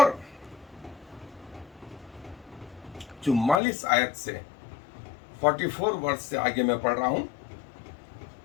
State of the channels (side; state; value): right; drops out; at 3.6 s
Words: 44 आयत से 44 वर्ष से आगे मैं पढ़ रहा हूं।